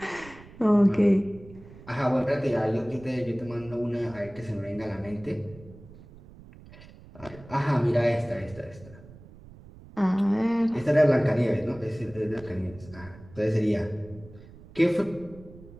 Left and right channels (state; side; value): noise; right; rumble, 20 dB below the sound